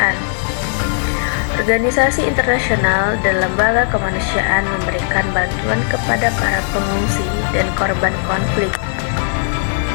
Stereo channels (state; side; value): silent; right; digital silence